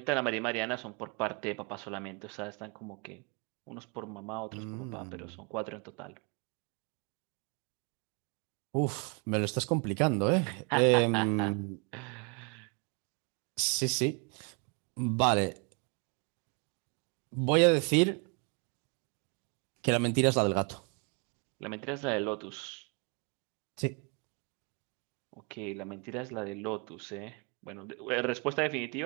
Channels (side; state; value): left; quieter; 34.3 dB